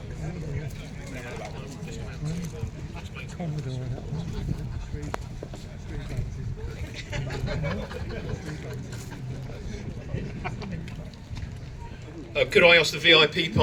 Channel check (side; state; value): both; identical; correlation 1.00